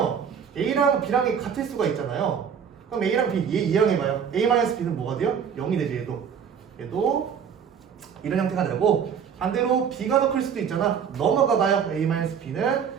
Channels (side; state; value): left; quieter; 7.4 dB